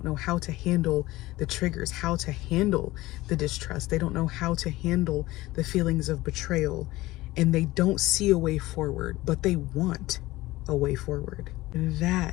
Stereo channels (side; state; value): right; quieter; 18.4 dB